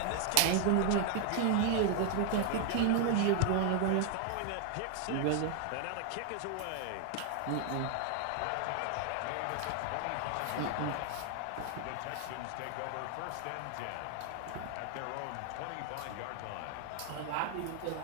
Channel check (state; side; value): different; both; correlation 0.00